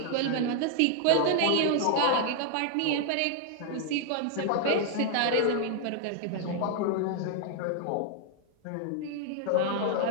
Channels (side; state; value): both; different; correlation 0.00